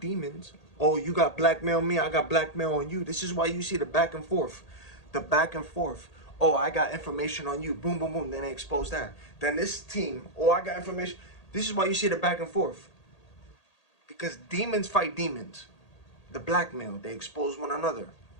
Oh, you got blackmail on me, I got blackmail on you. This is why you see the back and forth. The back and forth. Oh, I got information on you. Boom, boom, boom. Then they expose that. Then this team. Oh, I got information. This is why you see the back and forth. Because demons fight demons. The blackmail, they expose one another.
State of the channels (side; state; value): right; late; 1.8 ms